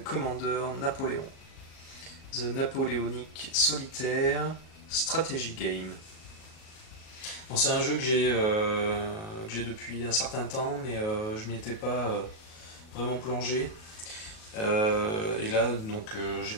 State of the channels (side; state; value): right; late; 37 ms